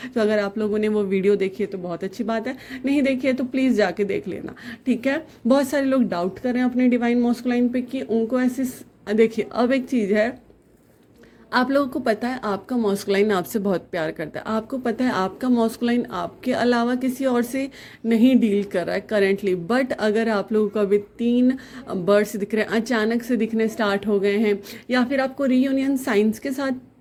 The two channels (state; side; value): identical; both; correlation 1.00